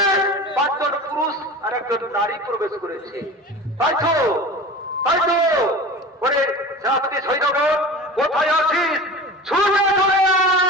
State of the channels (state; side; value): normal; both; correlation 0.34